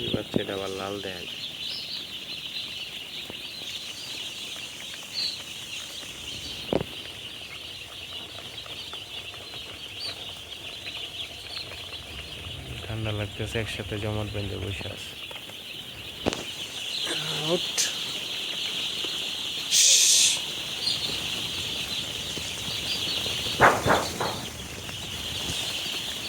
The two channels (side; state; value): both; identical; correlation 1.00